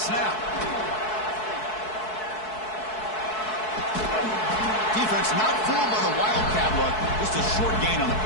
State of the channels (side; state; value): right; late; 4.6 ms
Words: Defense not fooled by the wildcat look. Just a short gain on the